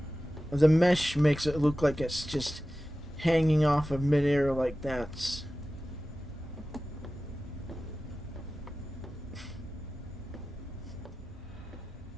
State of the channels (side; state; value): both; normal; correlation 0.95